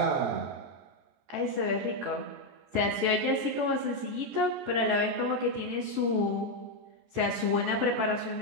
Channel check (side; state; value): left; late; 14 ms